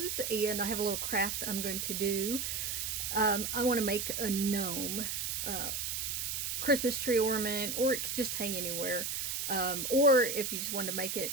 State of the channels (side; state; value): right; noise; hiss, 2 dB below the sound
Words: and I have a little craft I'm going to do. I want to make a gnome, Christmas tree ornament, or it could just hang anywhere. Or if you just wanted to make it